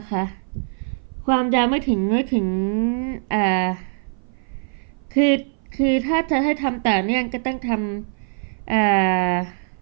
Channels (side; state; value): left; silent; 57 dB below the other